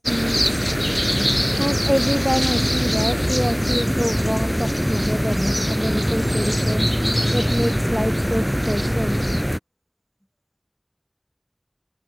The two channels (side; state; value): both; identical; correlation 1.00